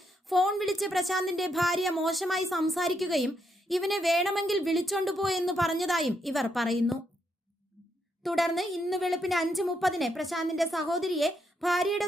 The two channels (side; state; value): both; normal; correlation 0.78